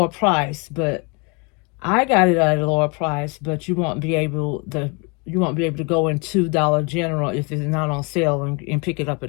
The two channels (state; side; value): quieter; right; 31.5 dB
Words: price. But I got it at a lower price, but you won't be able to go into Dollar General if it's not on sale and pick it up